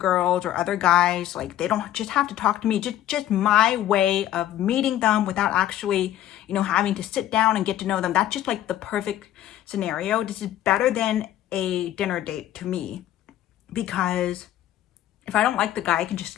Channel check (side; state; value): right; quieter; 12.8 dB